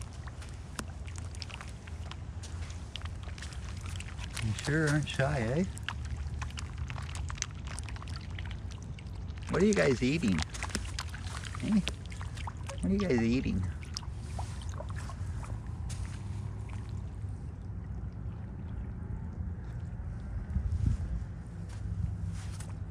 You sure aren't shy, eh? What are you guys eating? Hey? What are you guys eating?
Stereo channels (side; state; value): both; identical; correlation 1.00